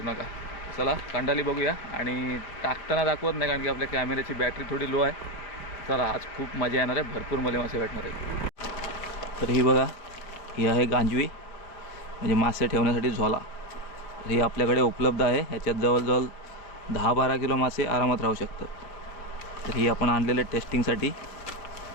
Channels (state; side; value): late; right; 5.2 ms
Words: नका. चला कांडाली बघूया. आणि टाकताना दाखवत नाही कारण की आपल्या कॅमेऱ्याची बॅटरी थोडी लो आहे. चला आज खूप मजा येणार आहे, भरपूर मले मासे भेटणार आहेत. तर ही बघा, ही आहे गांजवी, म्हणजे मासे ठेवण्यासाठी झोला. तर ही आपल्याकडे उपलब्ध आहे. ह्याच्यात जवळजवळ 10-12 किलो मासे आरामात राहू शकतात. तर ही आपण आणलेले टेस्टिंगसाठी.